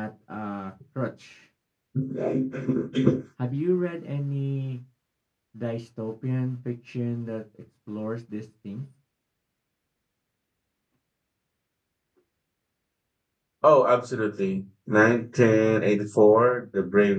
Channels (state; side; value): identical; both; correlation 1.00